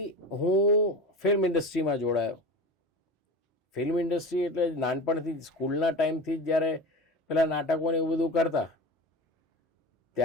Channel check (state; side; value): normal; both; correlation 0.31